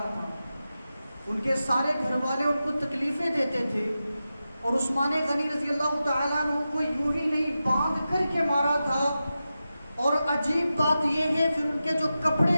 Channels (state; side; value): inverted; both; correlation -0.92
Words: تھا. ان کے سارے گھر والے ان کو تکلیفیں دیتے تھے، اور عثمان غنی رضی اللہ تعالیٰ عنہ کو یوں ہی نہیں باندھ کر کے مارا تھا. اور عجیب بات یہ ہے پھر ان کے جو